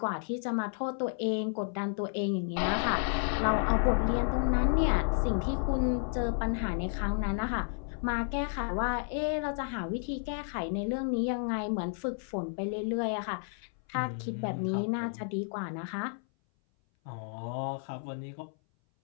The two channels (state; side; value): silent; right; 57 dB below the other